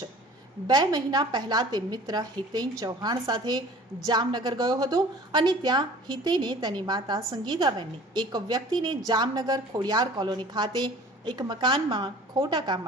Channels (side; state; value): both; normal; correlation 0.46